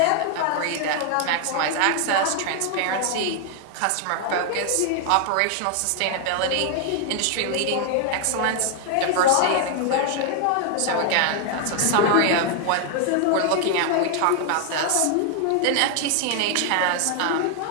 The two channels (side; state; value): both; different; correlation 0.00